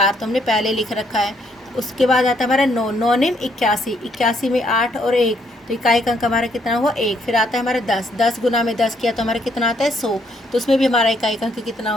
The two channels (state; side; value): normal; both; correlation 0.71